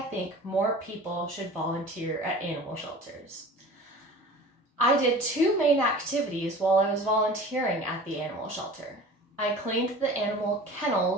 think more people should volunteer at animal shelters. I did two main activities while I was volunteering at the animal shelter. I cleaned the animal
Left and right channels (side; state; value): both; normal; correlation 0.41